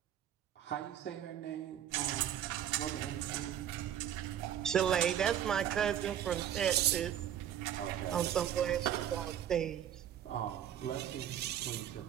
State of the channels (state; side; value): quieter; left; 10.3 dB